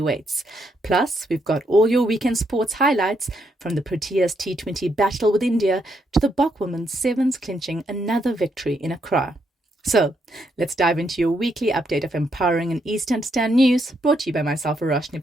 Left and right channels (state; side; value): normal; both; correlation 0.77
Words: Plus, we've got all your weekend sports highlights from the Proteas T20 battle with India to the Bok women's sevens clinching another victory in Accra. So, let's dive into your weekly update of empowering and easy to understand news brought to you by myself, Verashni